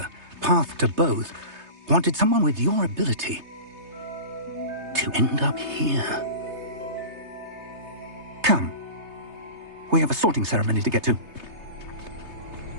path to both wanted someone with your ability to end up here. Come. We have a sorting ceremony to get to.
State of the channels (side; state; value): left; late; 3.3 ms